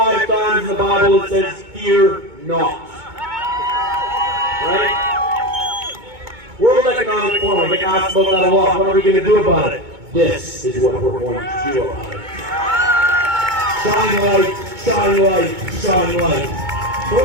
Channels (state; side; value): late; left; 2.2 ms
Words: times in the Bible it says, fear not. Right? World Economic Forum, I get asked about that a lot. What are we going to do about it? This is what we're going to do about it. Shine light, shine light, shine light. So